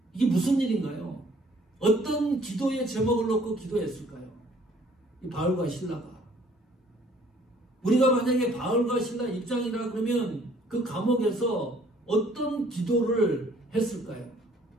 이게 무슨 일인가요? 어떤 기도의 제목을 놓고 기도했을까요? 이 바울과 실라가. 우리가 만약에 바울과 실라 입장이라 그러면 그 감옥에서 어떤 기도를 했을까요?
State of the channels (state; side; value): normal; both; correlation 0.59